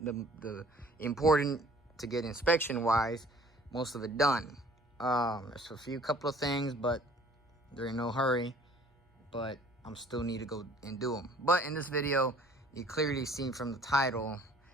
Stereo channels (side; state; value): both; normal; correlation 0.54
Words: important to get inspection wise, most of it done. There's a couple of things, but they're in no hurry, but I'm still need to go and do them. But in this video, you clearly see from the title,